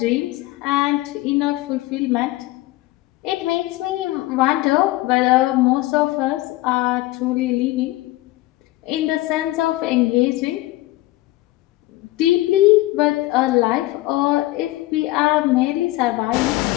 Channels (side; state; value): right; quieter; 18.2 dB